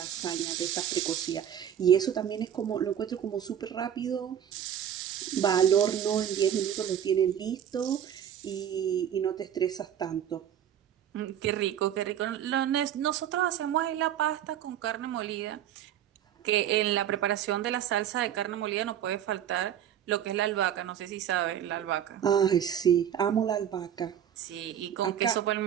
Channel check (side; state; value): left; quieter; 9.8 dB